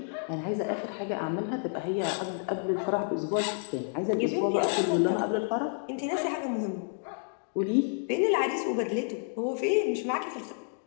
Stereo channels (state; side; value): silent; right; 58 dB below the other